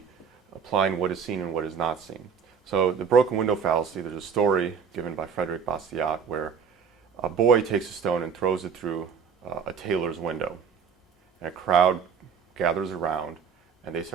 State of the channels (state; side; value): quieter; left; 6.7 dB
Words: applying what is seen and what is not seen. So the broken window fallacy, there's a story given by Frederick Bastiat where a boy takes a stone and throws it through a tailor's window. And a crowd gathers around and they